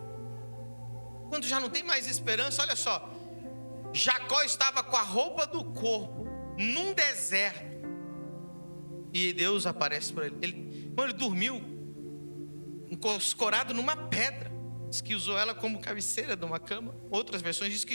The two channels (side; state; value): both; inverted; correlation -1.00